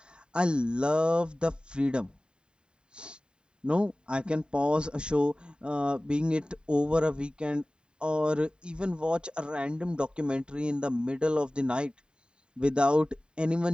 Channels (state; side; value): late; left; 0.049 ms